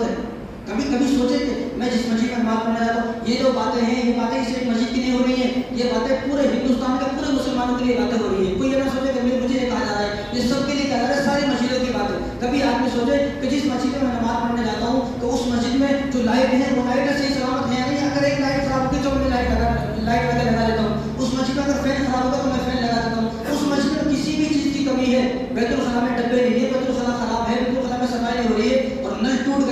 ہے. کبھی سوچے کہ میں جس مسجد میں نماز پڑھنے جاتا ہوں, یہ جو باتیں ہیں یہ باتیں اس ایک مسجد کی نہیں ہو رہی ہیں, یہ باتیں پورے ہندوستان کے پورے مسلمانوں کے لیے باتیں ہو رہی ہیں. کوئی یہ نہ سوچے کہ مجھے یہ کہا جا رہا ہے, یہ سب کے لیے کہا جا رہا ہے, ساری مسجدوں کی بات ہے. کبھی آدمی سوچے کہ جس مسجد میں نماز پڑھنے جاتا ہوں تو اس مسجد میں جو لائٹ ہے وہ لائٹ صحیح سلامت ہے یا نہیں. اگر ایک لائٹ خراب ہوگی تو میں لائٹ لگا دیتا ہوں. اس مسجد میں اگر فین خراب ہوگا تو میں فین لگا دیتا ہوں. اس مسجد میں کسی بھی چیز کی کمی ہے, بیت الخلا میں ڈبے نہیں ہے, بیت الخلا خراب ہے, بیت الخلا میں صفائی نہیں ہو رہی ہے, اور نل ٹوٹ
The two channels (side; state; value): both; identical; correlation 1.00